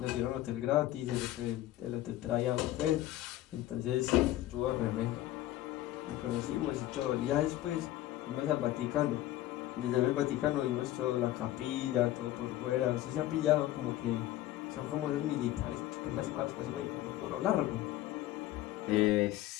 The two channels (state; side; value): quieter; right; 14.8 dB